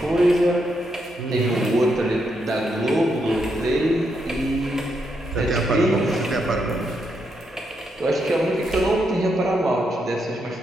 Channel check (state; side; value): normal; both; correlation 0.80